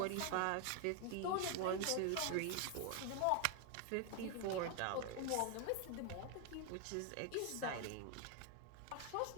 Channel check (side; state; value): both; different; correlation 0.01